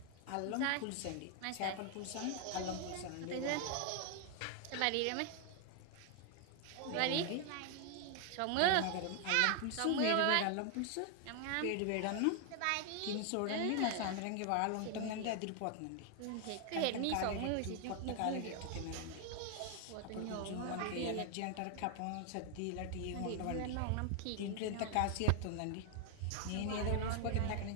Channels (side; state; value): both; different; correlation 0.00